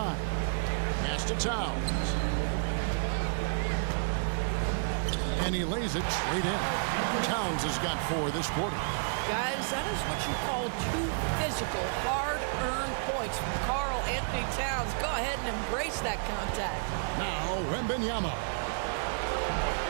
Pass to Towns. And he lays it straight in. Towns has got 4 this quarter. Guys, that is what you call 2 physical, hard-earned points from Karl Anthony Towns. Go ahead and embrace that contact. Now, Wembanyama.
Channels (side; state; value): left; silent; digital silence